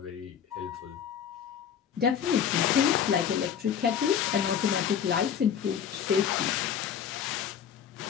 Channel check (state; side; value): quieter; right; 8.4 dB